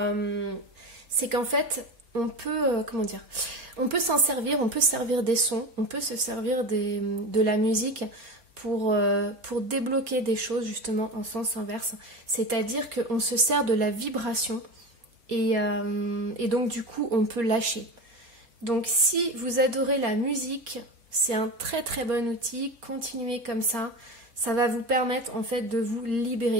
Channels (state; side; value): late; left; 4.3 ms